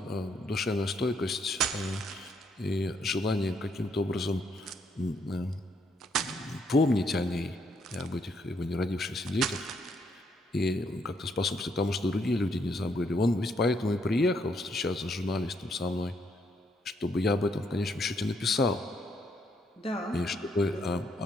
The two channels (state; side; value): normal; both; correlation 0.73